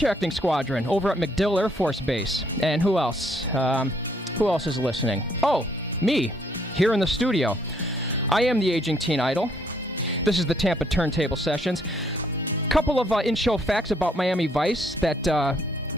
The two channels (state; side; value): normal; both; correlation 0.68